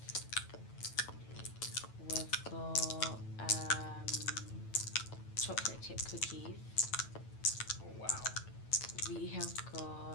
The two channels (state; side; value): late; right; 9.1 ms